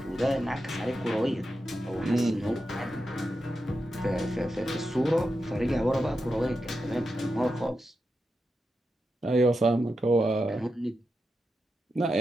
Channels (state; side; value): normal; both; correlation 0.88